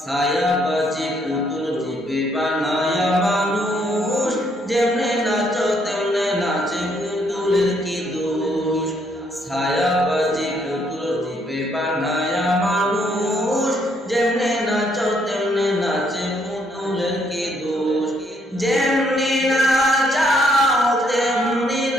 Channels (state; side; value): normal; both; correlation 0.70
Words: বাজি পুতুল রূপে বানায়া মানুষ, যেমনে নাচো তেমনে নাচে পুতুলের কি দোষ। ছায়া বাজি পুতুল রূপে বানায়া মানুষ, যেমনে নাচো তেমনে নাচে পুতুলের কি দোষ। যেমনি নাচাও তেমনি